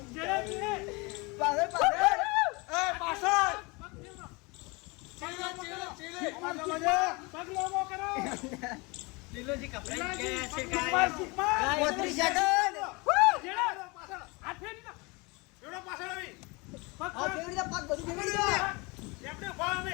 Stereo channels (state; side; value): quieter; right; 26.9 dB